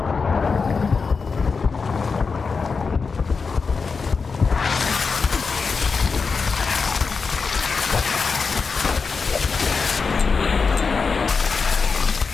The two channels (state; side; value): quieter; right; 4.9 dB